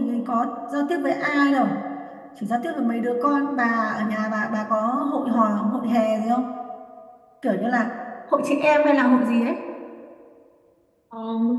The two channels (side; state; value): both; identical; correlation 1.00